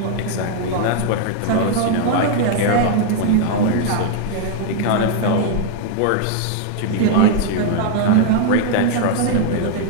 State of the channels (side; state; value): both; different; correlation 0.00